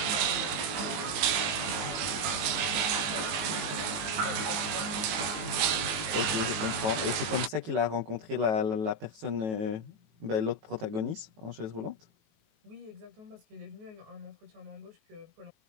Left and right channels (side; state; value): left; late; 19 ms